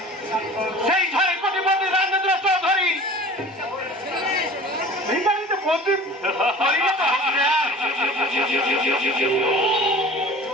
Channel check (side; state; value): both; normal; correlation 0.42